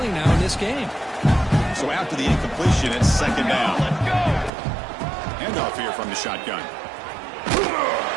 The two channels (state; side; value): drops out; left; at 4.5 s